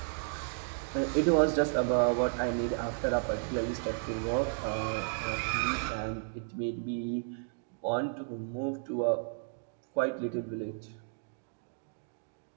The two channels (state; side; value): silent; left; digital silence